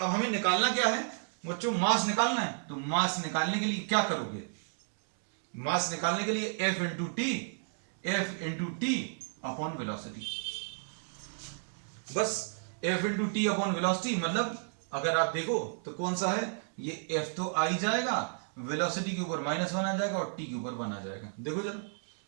हमें निकालना क्या है बच्चों, मास निकालना है। तो मास निकालने के लिए क्या करोगे, मास निकालने के लिए F into T upon velocity. बस F into T upon velocity, मतलब अगर आप देखो तो कौन सा है, ये एफ तो आ ही जाएगा, वेलोसिटी के ऊपर -1 आ जाएगा और टी के ऊपर 1 आ जाएगा। देखो जरा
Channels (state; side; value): silent; left; digital silence